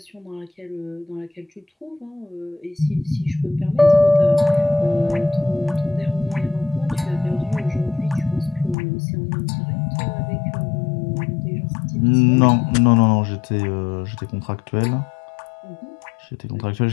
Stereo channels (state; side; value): drops out; right; at 8.8 s